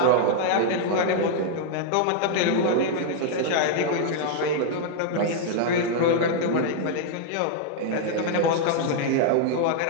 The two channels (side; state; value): both; different; correlation 0.00